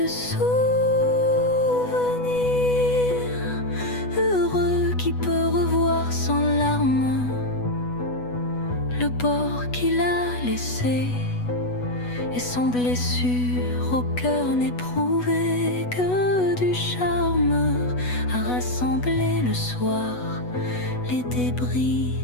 souvenir heureux qui peut revoir sans larmes le bord qu'il a laissé, et sans blessure au cœur n'éprouvé que du charme, à rassembler le soir les débris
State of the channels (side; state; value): right; late; 8.1 ms